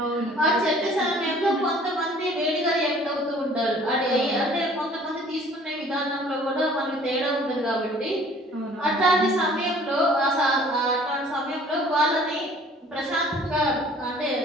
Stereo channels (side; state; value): both; normal; correlation 0.53